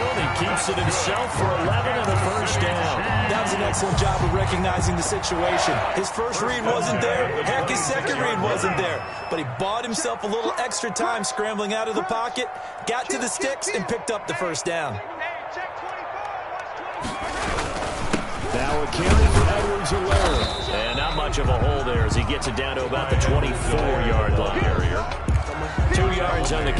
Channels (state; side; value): identical; both; correlation 1.00